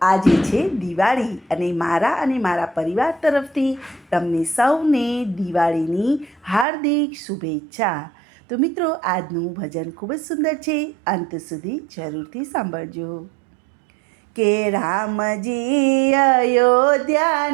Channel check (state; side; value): drops out; left; at 6.7 s